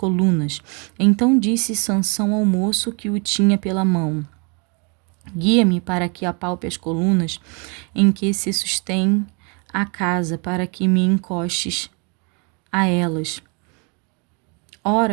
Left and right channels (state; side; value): quieter; left; 34.1 dB